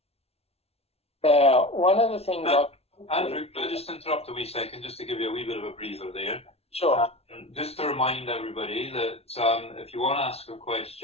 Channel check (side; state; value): right; late; 0.30 ms